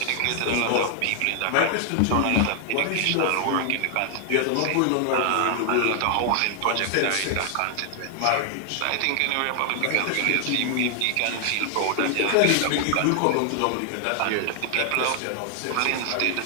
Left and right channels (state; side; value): different; both; correlation 0.00